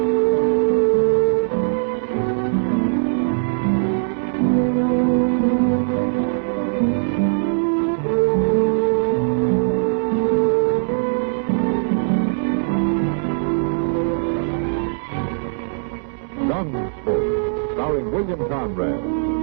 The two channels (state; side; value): silent; left; 66 dB below the other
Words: Gunsmoke, starring William Conrad,